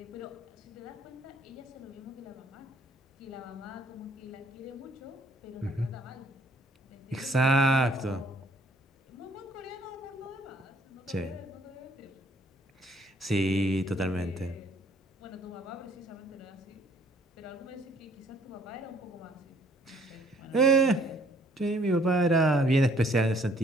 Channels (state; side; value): normal; both; correlation 0.61